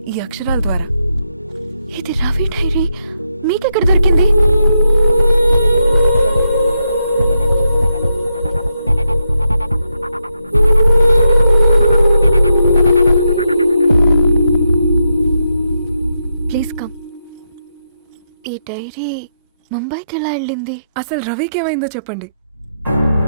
ఈ అక్షరాల ద్వారా. ఇది రవి డైరీ మీకెక్కడ దొరికింది? Please come. ఈ డైరీ ముంబైకి ఎలా వెళ్ళింది? అసలు రవికి ఏమైందో చెప్పండి.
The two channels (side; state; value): both; inverted; correlation -0.83